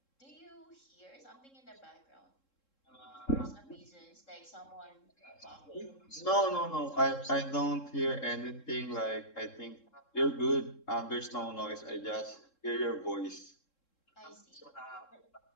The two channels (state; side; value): late; right; 3.7 ms